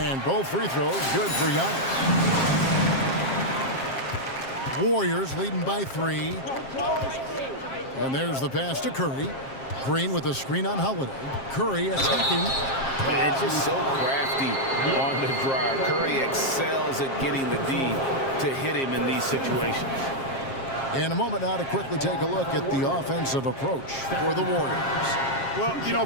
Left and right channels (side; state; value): right; late; 7.5 ms